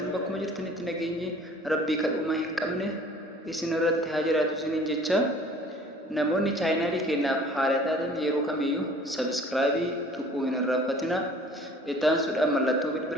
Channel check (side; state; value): both; normal; correlation 0.50